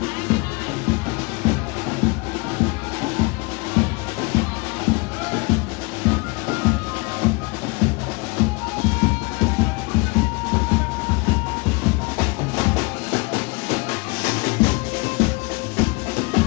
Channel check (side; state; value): right; quieter; 28.3 dB